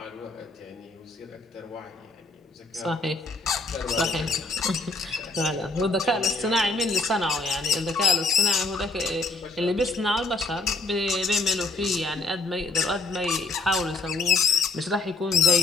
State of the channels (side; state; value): right; quieter; 3.3 dB